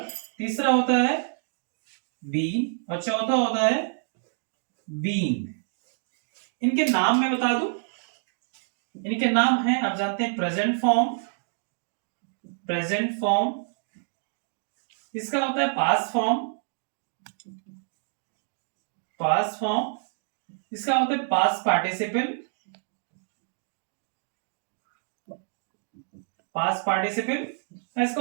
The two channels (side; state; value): left; silent; digital silence